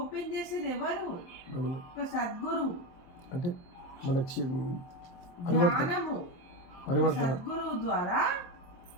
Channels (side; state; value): right; late; 23 ms